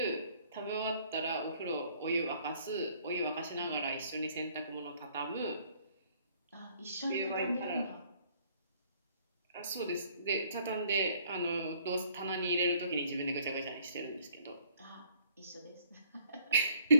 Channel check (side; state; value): both; inverted; correlation -0.61